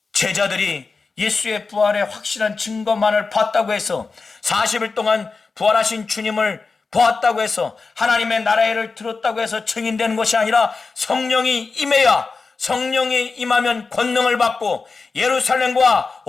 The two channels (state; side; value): quieter; right; 4.3 dB